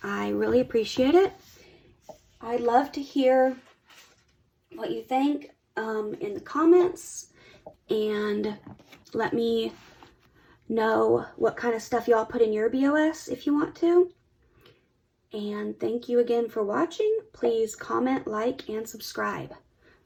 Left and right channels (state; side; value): identical; both; correlation 1.00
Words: I really appreciate it. I'd love to hear what you think in the comments, and let me know what kind of stuff y'all put in your BOS if you want to. And thank you again for watching. Please comment, like, and subscribe.